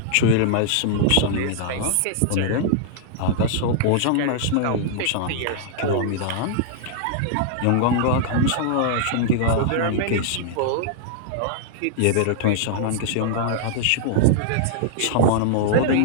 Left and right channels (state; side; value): different; both; correlation -0.01